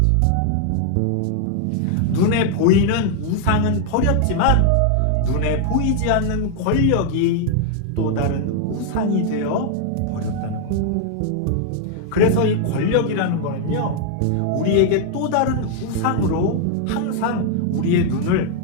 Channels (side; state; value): both; different; correlation 0.00